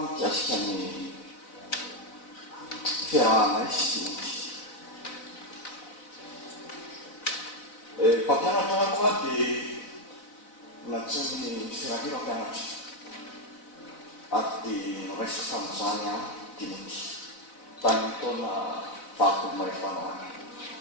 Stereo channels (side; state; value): right; late; 4.0 ms